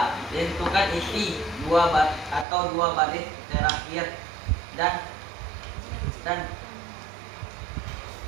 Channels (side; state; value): left; drops out; at 2.5 s